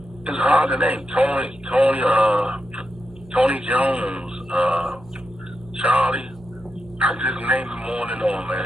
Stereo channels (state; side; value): noise; right; hum, 22 dB below the sound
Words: It's hard to name. Tony Jones, Charlie. I just named them on and on,